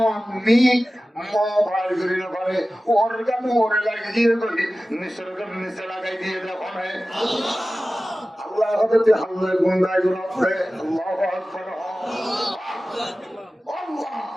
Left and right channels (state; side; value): normal; both; correlation 0.96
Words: মোবাইল করি না পারে ওর গান ওরে লাগিয়ে করি নিসর্গম নিচে লাগাই দিয়ে দেখো না আল্লাহ হতে হাল্লা গুন্ডাই গুনাতে আল্লাহু আকবার আল্লাহ